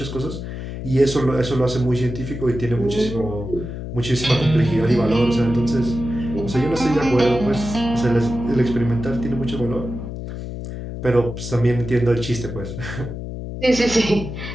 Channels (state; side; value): noise; left; hum, 8 dB below the sound